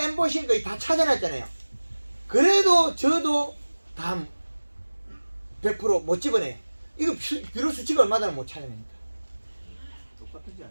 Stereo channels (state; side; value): inverted; both; correlation -1.00